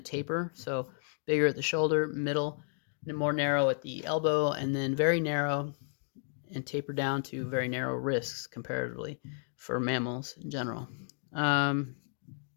taper, so bigger at the shoulder, middle, and more narrow at the elbow, and then very narrow and taper down to very narrow wrists comparatively for mammals in general.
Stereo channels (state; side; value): silent; right; 56 dB below the other